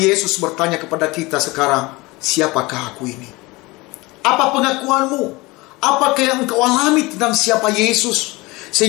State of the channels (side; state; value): right; quieter; 22.9 dB